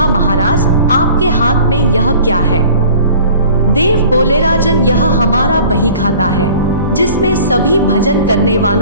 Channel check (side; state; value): both; inverted; correlation -0.47